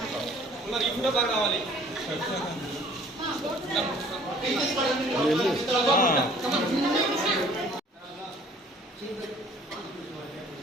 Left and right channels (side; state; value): both; normal; correlation 0.54